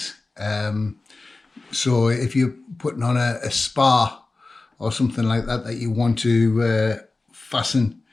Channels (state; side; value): quieter; right; 3.4 dB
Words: So if you're putting on a spar or something like that that you want to fasten